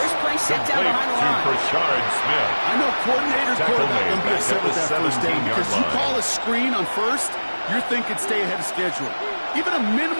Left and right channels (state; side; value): inverted; both; correlation -1.00